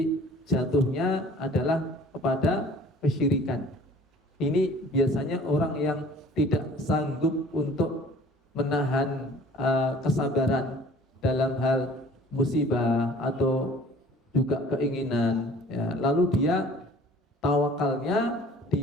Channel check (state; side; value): normal; both; correlation 0.50